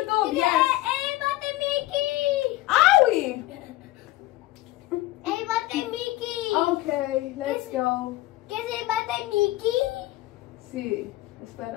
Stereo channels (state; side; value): quieter; right; 17.1 dB